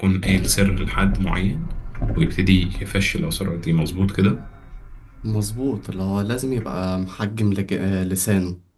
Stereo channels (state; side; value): identical; both; correlation 1.00